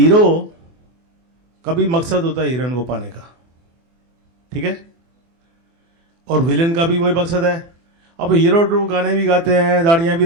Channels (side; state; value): left; late; 24 ms